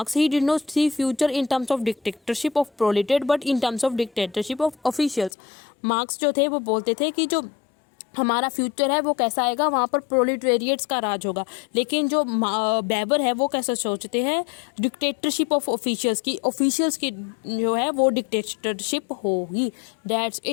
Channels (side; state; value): right; drops out; at 5.3 s